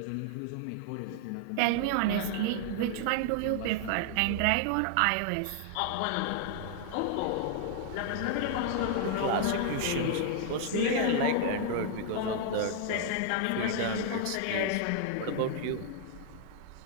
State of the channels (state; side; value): different; both; correlation -0.01